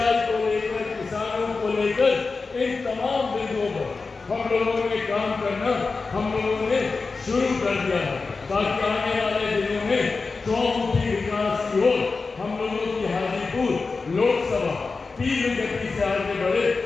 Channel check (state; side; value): quieter; right; 4.2 dB